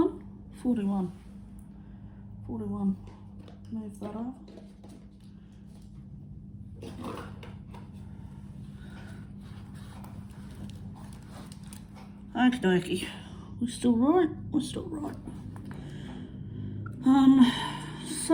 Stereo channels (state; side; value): identical; both; correlation 1.00